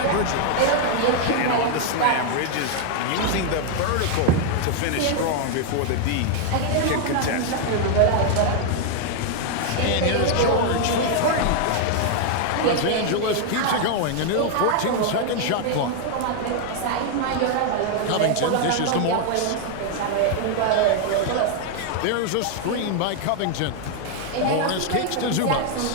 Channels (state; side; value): different; both; correlation 0.00